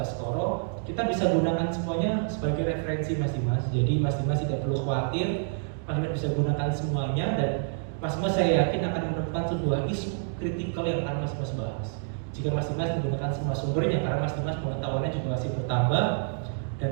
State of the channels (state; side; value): silent; left; digital silence